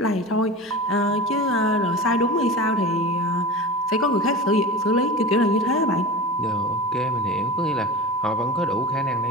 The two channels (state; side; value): normal; both; correlation 0.30